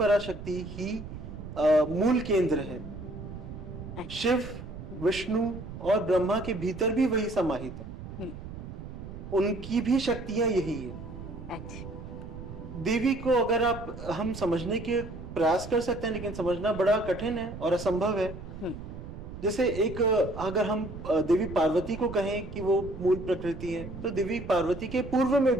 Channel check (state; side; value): noise; right; rumble, 11 dB below the sound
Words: ही मूल केंद्र है। शिव, विष्णु और ब्रह्मा के भीतर भी वही समाहित है। उनकी भी शक्तियां यही है। देवी को अगर हम समझने के प्रयास कर सकते हैं, लेकिन समझना बड़ा कठिन है और असंभव है। जैसे अगर हम देवी पार्वती को कहें कि वो मूल प्रकृति है, तो देवी पार्वती के पूर्व में